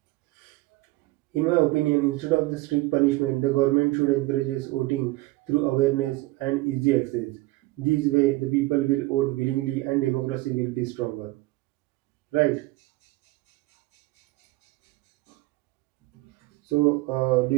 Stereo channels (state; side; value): quieter; left; 20.6 dB